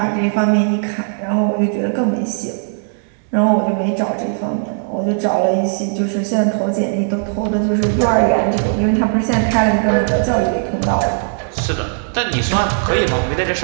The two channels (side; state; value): left; silent; digital silence